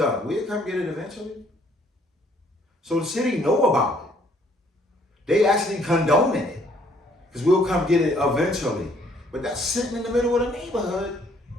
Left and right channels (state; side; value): normal; both; correlation 0.63